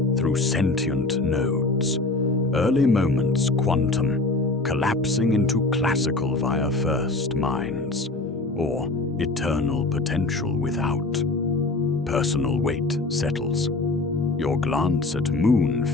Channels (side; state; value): right; quieter; 3.2 dB